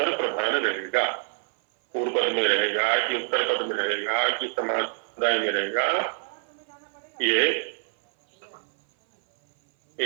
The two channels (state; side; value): silent; left; 57 dB below the other